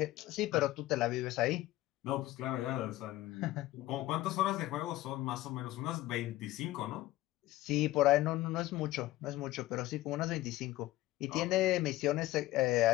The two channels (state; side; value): quieter; right; 16.6 dB